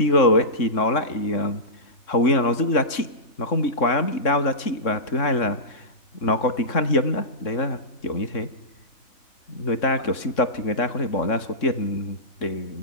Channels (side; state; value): right; late; 3.6 ms